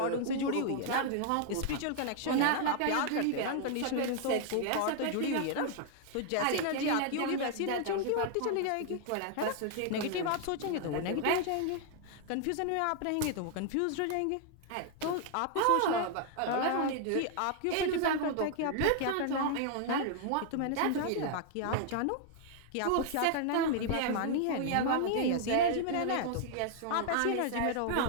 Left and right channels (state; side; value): different; both; correlation 0.00